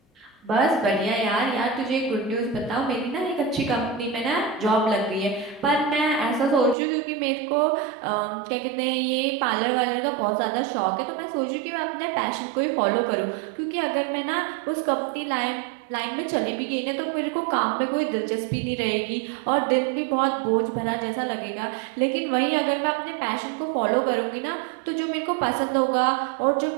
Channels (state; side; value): drops out; left; at 6.8 s